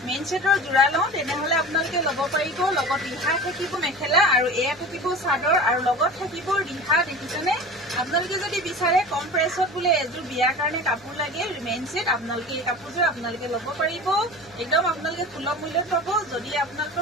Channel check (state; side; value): noise; left; hum, 28 dB below the sound